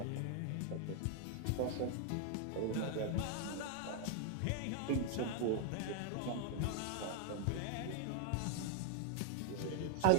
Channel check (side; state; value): both; different; correlation 0.00